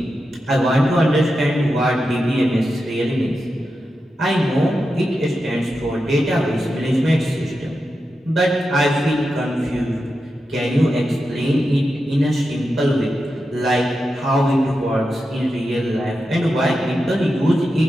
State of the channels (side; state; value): both; normal; correlation 0.89